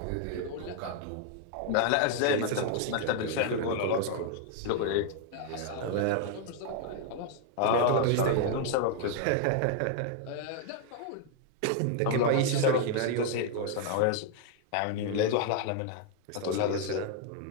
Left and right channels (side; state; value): both; different; correlation 0.00